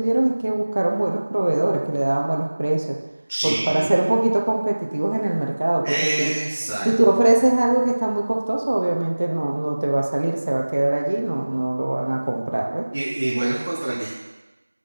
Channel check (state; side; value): inverted; both; correlation -1.00